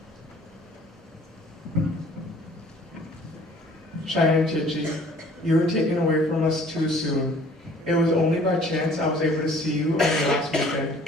Cheyenne Chichi, you were taken away from us too soon. It was only by chance I was able to see you on the last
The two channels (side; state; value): both; normal; correlation 0.54